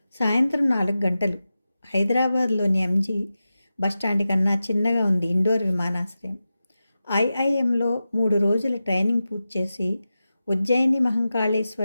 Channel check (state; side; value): inverted; both; correlation -0.92